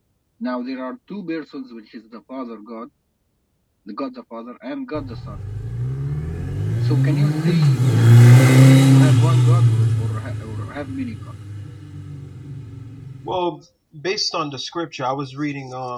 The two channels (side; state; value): both; identical; correlation 1.00